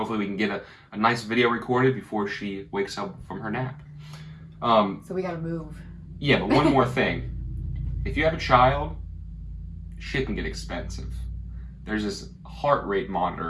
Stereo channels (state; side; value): identical; both; correlation 1.00